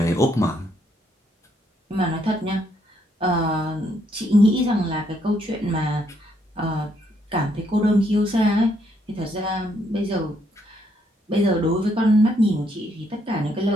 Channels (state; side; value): normal; both; correlation 0.73